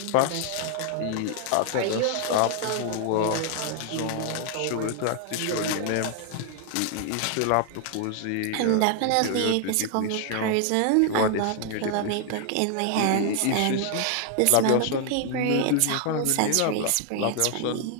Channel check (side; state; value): both; different; correlation 0.00